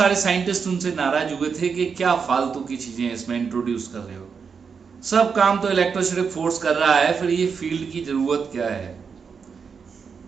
साइंटिस्ट उनसे नाराज हुए थे कि क्या फालतू की चीजें इसमें इंट्रोड्यूस कर रहे हो, सब काम तो इलेक्ट्रोस्टैटिक फोर्स कर रहा है, फिर ये फील्ड की जरूरत क्या है।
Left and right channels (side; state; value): left; quieter; 5.9 dB